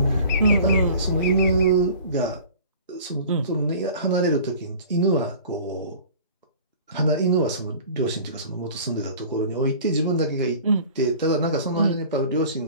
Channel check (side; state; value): both; inverted; correlation -0.43